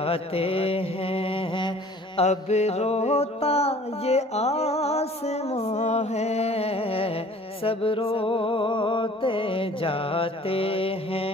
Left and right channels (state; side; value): normal; both; correlation 0.50